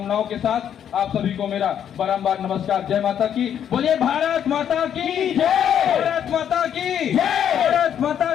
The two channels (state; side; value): quieter; right; 9.2 dB